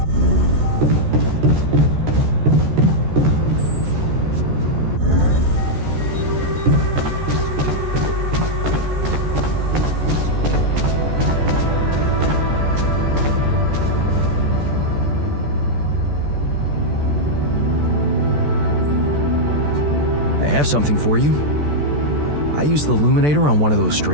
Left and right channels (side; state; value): left; late; 14 ms